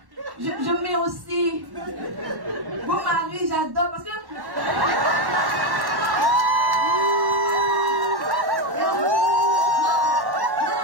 je mets aussi. Bon mari, j'adore parce que.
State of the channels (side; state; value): left; late; 1.1 ms